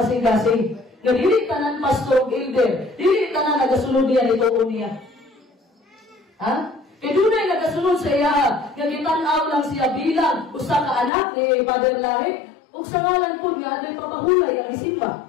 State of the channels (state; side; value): drops out; right; at 11.1 s